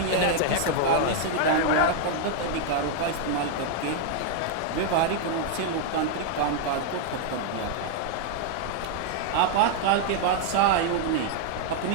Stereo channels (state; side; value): different; both; correlation 0.00